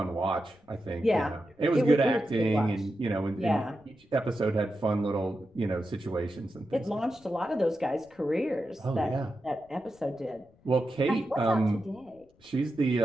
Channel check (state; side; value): noise; left; rumble, 30 dB below the sound